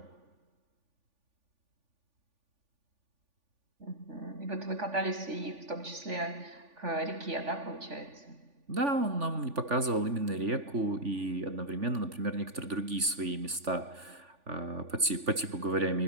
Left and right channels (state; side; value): late; left; 3.5 ms